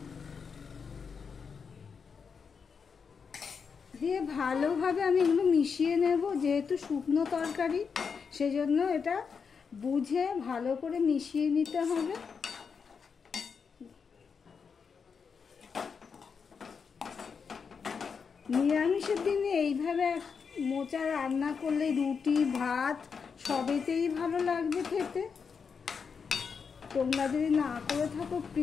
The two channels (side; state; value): right; quieter; 5.9 dB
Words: দিয়ে ভালোভাবে আমি এগুলো মিশিয়ে নেব। যেহেতু শুকনো তরকারি সেজন্য এটা বুঝে ভালো করে মিশিয়ে নিতে হবে। নিরামিষের দিনে এইভাবে মোচা রান্না করলে রুটি ভাত সবেতেই ভালো লাগবে খেতে। তোমরা যদি না করে থাকো